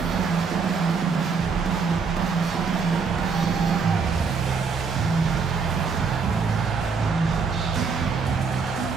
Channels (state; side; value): quieter; left; 5.3 dB